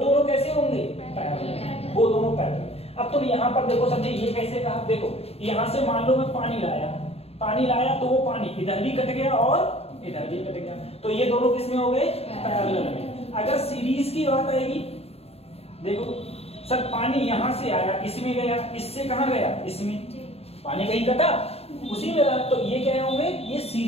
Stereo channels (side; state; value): right; late; 0.29 ms